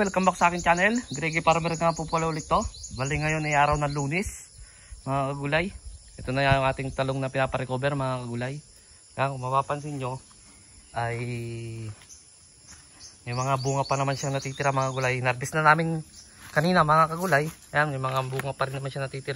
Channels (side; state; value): both; identical; correlation 1.00